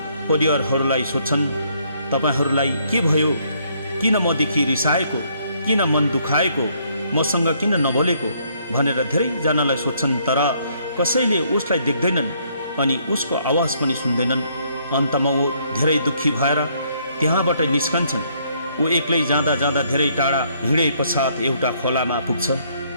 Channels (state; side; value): inverted; both; correlation -0.68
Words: परिवारहरूलाई सोध्छन्, तपाईँहरूलाई के भयो, किन मदेखि रिसाएको, किन मन दुखाएको, मसँग किन नबोलेको भनेर धेरैजनालाई सोध्छन्, तर कसैले उसलाई देख्दैनन् अनि उसको आवाज पनि सुन्दैनन्। अन्तमा ऊ धेरै दुःखी भएर त्यहाँबाट निस्कन्छन्। ऊ एक्लै जाँदा जाँदा धेरै टाढा हिँडे पश्चात एउटा खोलामा पुग्छ।